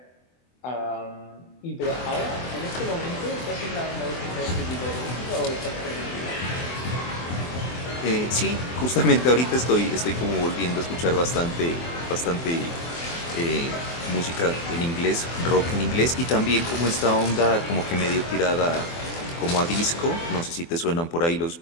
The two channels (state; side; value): late; right; 24 ms